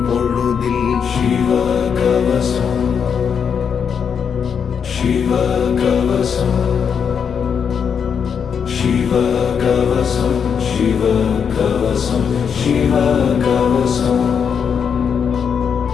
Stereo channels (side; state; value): right; quieter; 7.0 dB